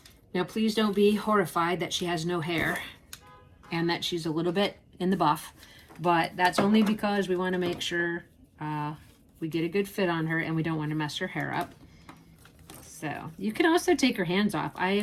Now, please don't be horrified that she has no hair and that she's a little bit in the buff, but that's only because we want to make sure we get a good fit on her and we don't want to mess her hair up. So you can also take her hands off. I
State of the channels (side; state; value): both; identical; correlation 1.00